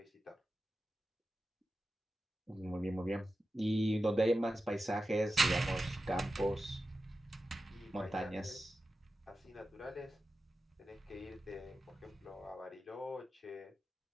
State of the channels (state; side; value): normal; both; correlation 0.93